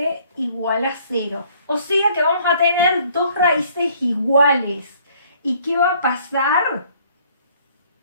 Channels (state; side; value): inverted; both; correlation -0.61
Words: igual a 0. O sea que vamos a tener dos raíces iguales. ¿Y qué va a pasar?